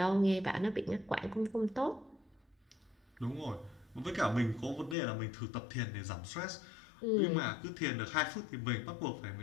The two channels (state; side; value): drops out; right; at 5.0 s